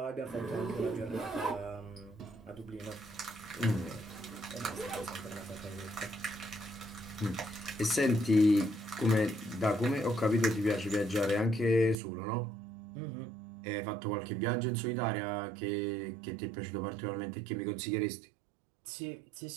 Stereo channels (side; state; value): left; drops out; at 12.0 s